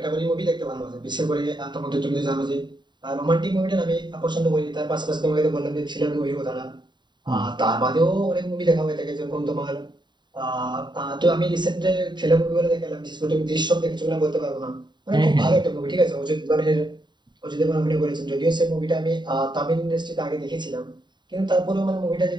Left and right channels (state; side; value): late; left; 0.22 ms